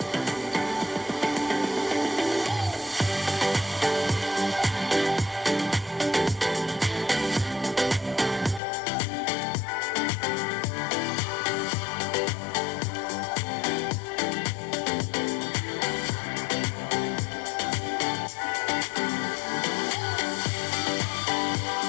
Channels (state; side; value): drops out; right; at 8.6 s